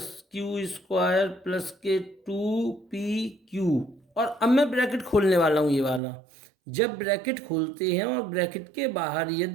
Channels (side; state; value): left; drops out; at 6.0 s